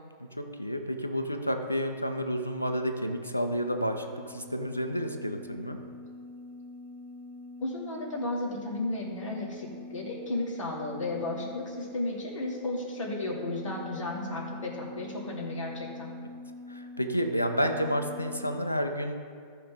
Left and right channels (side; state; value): both; inverted; correlation -0.63